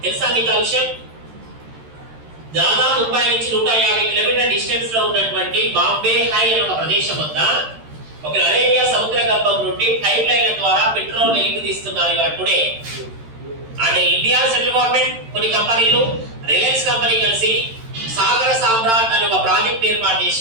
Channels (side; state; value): left; late; 13 ms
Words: తెలుసా మీకు ఆ విషయం? దాదాపు ముంబై నుంచి 150 కిలోమీటర్ల డిస్టెన్స్ లో ఉన్నటువంటి బాంబే హై అనే ఒక ప్రదేశం వద్ద ఒక అరేబియా సముద్ర గర్భం నుండి పైప్ లైన్ల ద్వారా పెట్రోల్ వెలికి తీస్తున్నారు ఇవాళ టుడే. అంటే ఇండియా సెంట్రల్ గవర్నమెంట్, కొన్ని కంపెనీలు, రిలయన్స్ కంపెనీ కలిసి సాగర సామ్రాట్ అనే ఒక ప్రాజెక్ట్ ఏర్పాటు